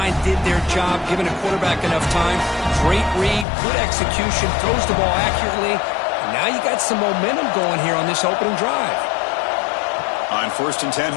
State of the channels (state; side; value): drops out; right; at 3.5 s